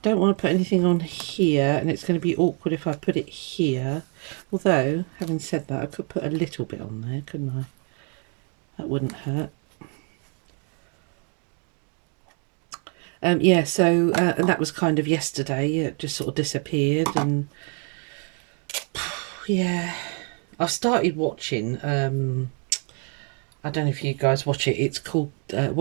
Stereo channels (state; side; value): quieter; left; 39.4 dB